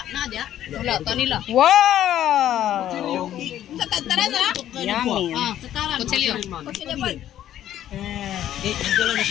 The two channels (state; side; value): quieter; right; 11.7 dB